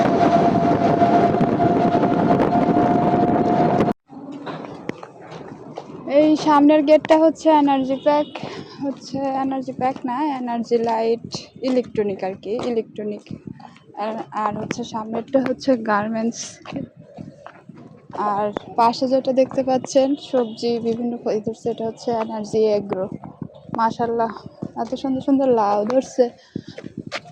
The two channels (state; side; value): identical; both; correlation 1.00